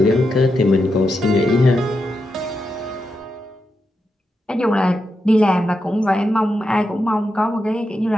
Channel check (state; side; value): normal; both; correlation 0.86